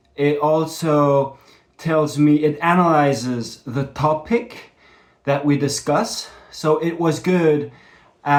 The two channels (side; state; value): both; identical; correlation 1.00